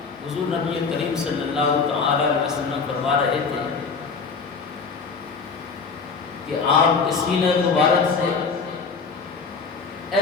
حضور نبی کریم صلی اللہ تعالی علیہ وسلم فرما رہے تھے کہ آپ کے سینہ مبارک سے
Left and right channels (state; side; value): quieter; right; 5.0 dB